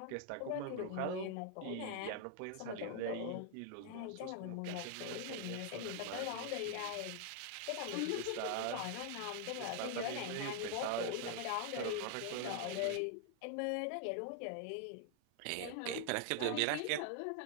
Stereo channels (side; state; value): both; different; correlation 0.00